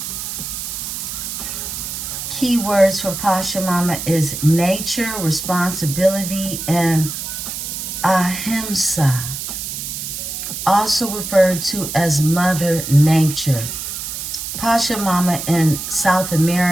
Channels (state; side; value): noise; right; hiss, 6 dB below the sound